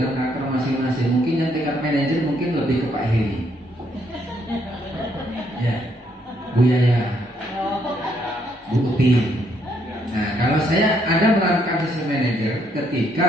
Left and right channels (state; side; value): normal; both; correlation 0.72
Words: karakter masing-masing. Mungkin yang tingkat manajer mungkin lebih ke Pak Heri. Ya, Bu Yaya, Bu Uti. Nah, kalau saya ada menerapkan sistem manajer